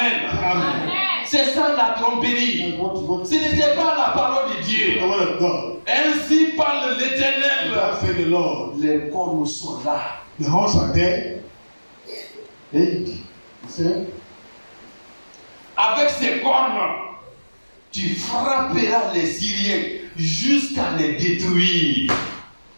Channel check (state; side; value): inverted; both; correlation -1.00